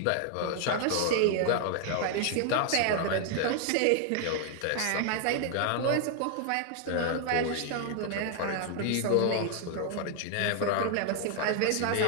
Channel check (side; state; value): both; different; correlation 0.00